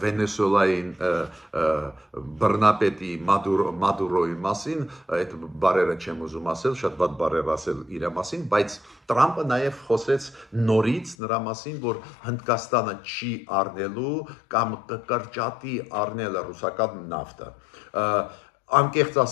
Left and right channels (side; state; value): right; drops out; at 11.2 s